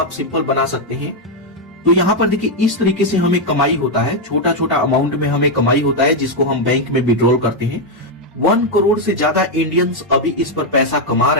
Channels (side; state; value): both; normal; correlation 0.02